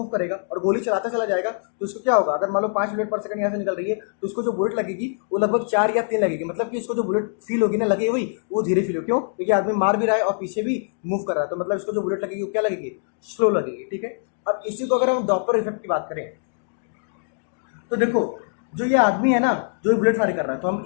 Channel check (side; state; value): right; silent; digital silence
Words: करेगा और गोली चलाता चला जाएगा तो इसको क्या होगा, अगर मान लो 5 बुलेट पर सेकंड यहाँ से निकल रही है तो इसको जो बुलेट लगेगी वो लगभग 4 या 3 लगेगी। मतलब कि इसको जो बुलेट फील होगी ना, लगे वही वो धीरे फील हो, क्यों, क्योंकि आदमी मार भी रहा है और पीछे भी मूव कर रहा है, तो मतलब इसको जो बुलेट लगेगी वो क्या लगेगी, स्लो लगेगी, ठीक है। अब इसी को अगर हम डॉपलर इफेक्ट की बात करें तो देखो जो ये आदमी है ना जो बुलेट फायर कर रहा है, तो हम